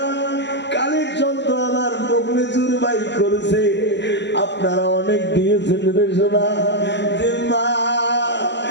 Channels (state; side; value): late; right; 0.51 ms